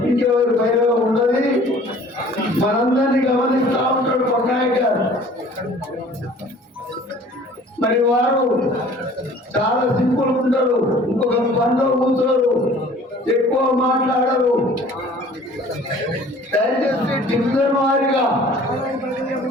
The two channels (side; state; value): both; normal; correlation 0.50